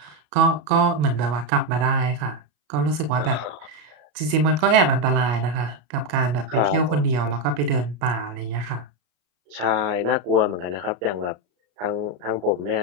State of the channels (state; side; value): late; left; 34 ms